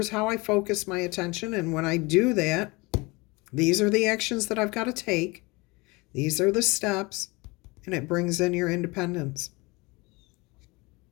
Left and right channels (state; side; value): quieter; right; 25.0 dB